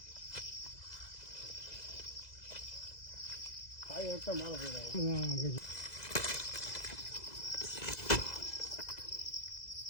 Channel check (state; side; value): late; right; 2.0 ms